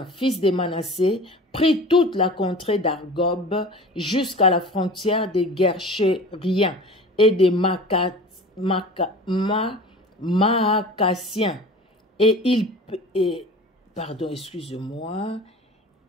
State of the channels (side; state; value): both; normal; correlation 0.39